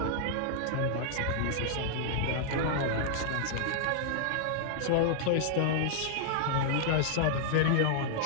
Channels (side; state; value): both; different; correlation 0.00